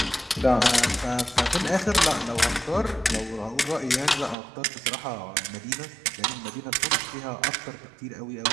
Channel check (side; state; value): left; drops out; at 4.4 s